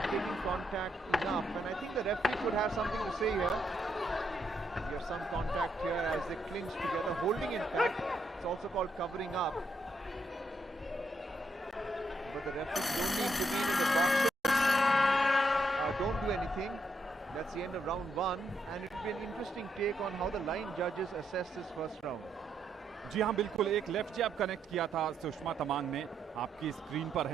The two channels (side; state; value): both; normal; correlation 0.77